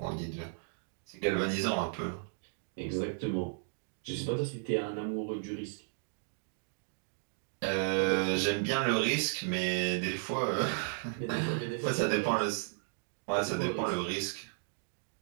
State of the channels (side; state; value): left; silent; digital silence